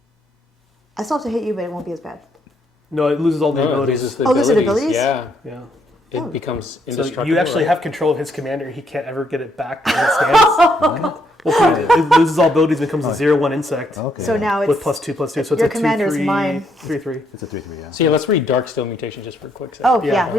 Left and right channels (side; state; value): both; normal; correlation 0.73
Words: I still have to hit you, but it won't be as bad. No, it loses all the No, it abilities. loses the Oh, loses the abilities. abilities? Yeah. Yeah. It becomes So indestructible. you actually right? have control of his commander. He can't ever get it back as it stands. Well, it loses all abilities, becomes a 0/1 insect Okay. So now it's with +2/+2. So it's your a 2/3. commander's mine. 3/3. It's a 3/3. Yeah. So yeah, let's read Darksteel Mutation just for a quick second. Oh, yeah, Yeah.